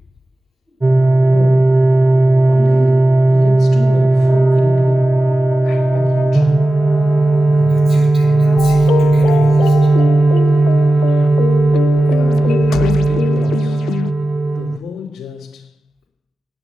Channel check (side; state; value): both; normal; correlation 0.95